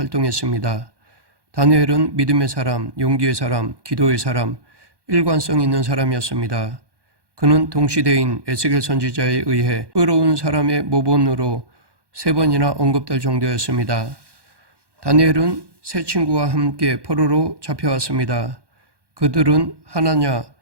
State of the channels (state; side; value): late; left; 1.1 ms